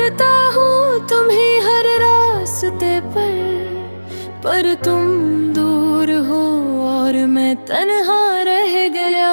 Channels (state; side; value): inverted; both; correlation -1.00